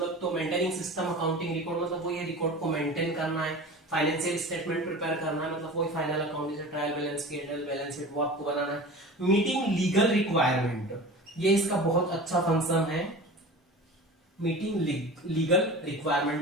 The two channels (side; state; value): both; normal; correlation 0.35